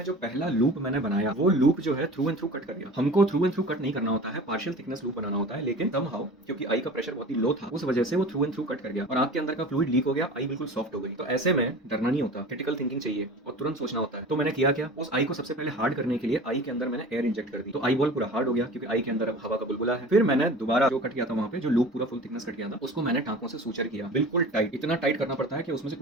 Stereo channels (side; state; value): both; normal; correlation 0.38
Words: जो पहला लूप मैंने बनाया, वो लूप जो है थ्रू एंड थ्रू कट कर गया। हमको थ्रू एंड थ्रू कट नहीं करना होता है, पार्शियल थिकनेस लूप बनाना होता है, लेकिन समहाउ क्योंकि आई का प्रेशर बहुत ही लो था, उस वजह से वो थ्रू एंड थ्रू कट कर गया और आंख के अंदर का फ्लूइड लीक हो गया, आई बिल्कुल सॉफ्ट हो गई। तो ऐसे में डरना नहीं होता, क्रिटिकल थिंकिंग चाहिए और तुरंत सोचना होता है। तो मैंने किया क्या, उस आई को सबसे पहले हार्ड करने के लिए आई के अंदर मैंने एयर इंजेक्ट कर दी। तो आई बॉल पूरा हार्ड हो गया, क्योंकि आई के अंदर अब हवा का बुलबुला है। फिर मैंने दोबारा जो कट किया था वहां पे, जो लूप पूरा फुल थिकनेस कट किया था, उसको मैंने टांकों से सूचर किया, बिल्कुल टाइट, इतना टाइट करना पड़ता है कि उसमें से